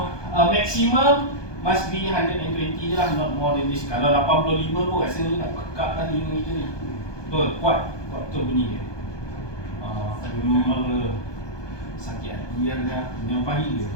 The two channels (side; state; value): right; late; 1.2 ms